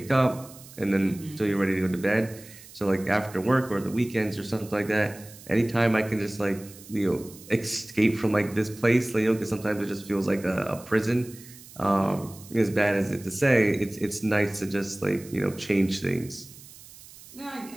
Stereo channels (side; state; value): right; noise; hiss, 19 dB below the sound